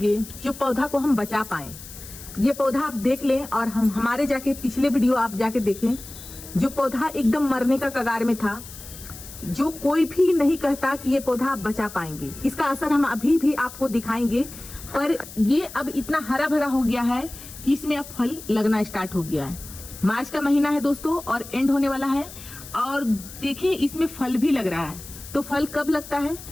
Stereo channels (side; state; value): left; noise; hiss, 15 dB below the sound